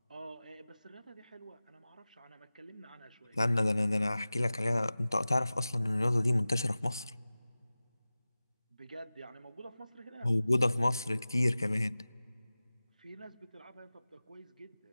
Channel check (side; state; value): both; inverted; correlation -0.96